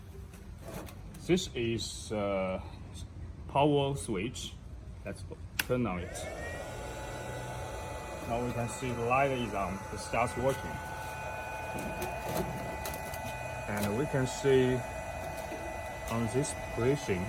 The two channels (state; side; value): identical; both; correlation 1.00